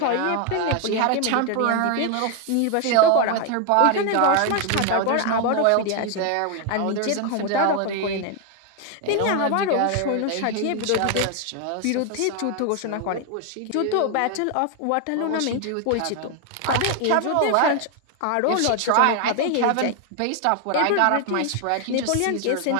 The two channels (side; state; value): both; different; correlation 0.01